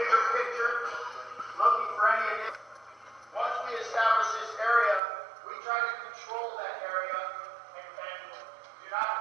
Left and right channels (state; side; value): drops out; left; at 5.0 s